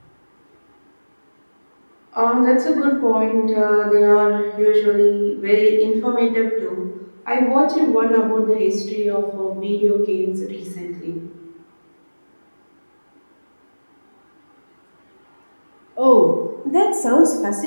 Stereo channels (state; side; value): inverted; both; correlation -1.00